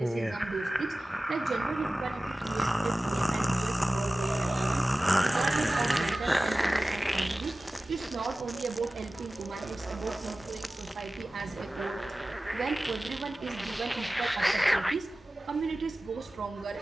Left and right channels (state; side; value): normal; both; correlation 0.97